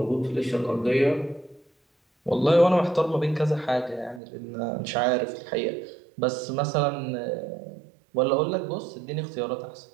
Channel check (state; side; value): drops out; left; at 4.2 s